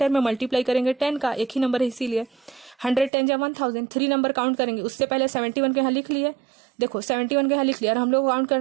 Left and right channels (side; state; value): left; drops out; at 3.1 s